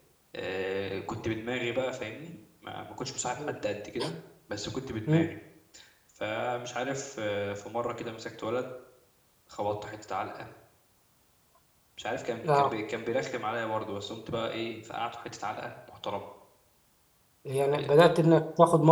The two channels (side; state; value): both; identical; correlation 1.00